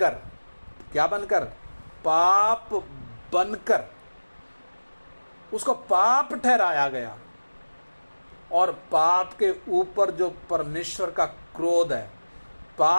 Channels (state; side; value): inverted; both; correlation -1.00